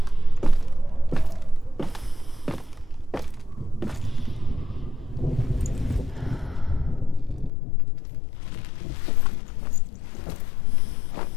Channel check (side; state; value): right; drops out; at 7.5 s